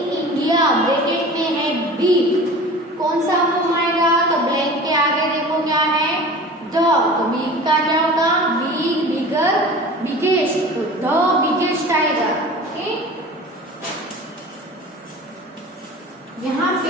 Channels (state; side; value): normal; both; correlation 0.39